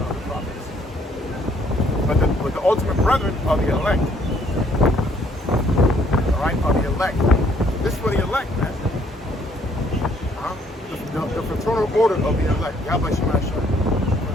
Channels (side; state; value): both; normal; correlation 0.65